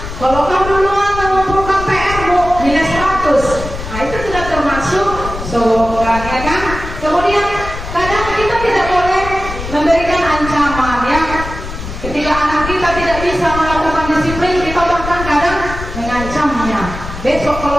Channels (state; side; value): noise; left; rumble, 9 dB below the sound